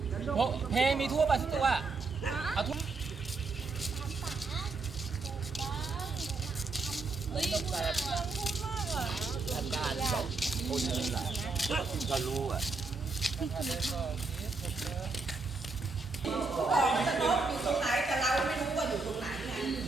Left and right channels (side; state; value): left; quieter; 3.9 dB